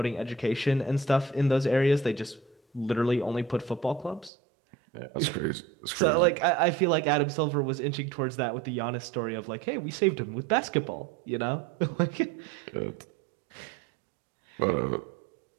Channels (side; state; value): left; drops out; at 4.3 s